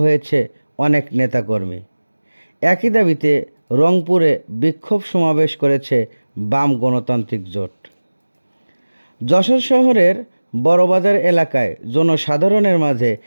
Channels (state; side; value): inverted; both; correlation -1.00